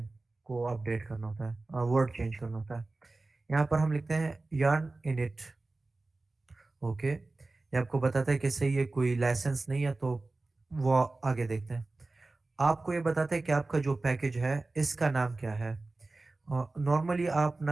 को अपडेट करना होता है, वर्ड चेंज करना होता है। यहाँ पर हम लिखते हैं yarn init। ओके, ये आपको बताता है कि सही है, कोई लाइसेंस नहीं है, तो वो आगे देखते हैं। आपको ये बताता है कि आपका जो पैकेज है इसका नाम क्या है। नॉर्मली आप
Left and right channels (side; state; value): left; quieter; 3.2 dB